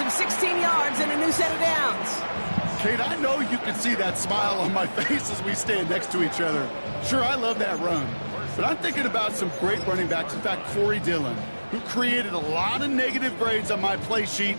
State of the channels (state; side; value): inverted; both; correlation -1.00